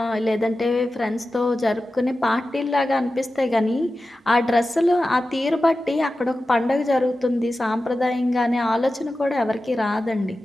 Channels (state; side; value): normal; both; correlation 0.94